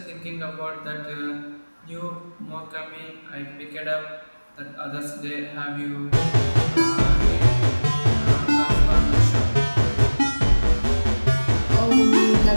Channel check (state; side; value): inverted; both; correlation -1.00